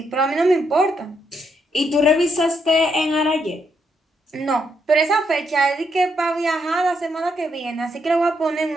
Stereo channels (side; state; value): both; normal; correlation 0.77